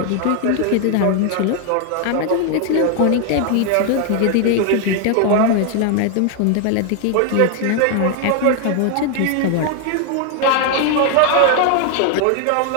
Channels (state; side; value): different; both; correlation 0.00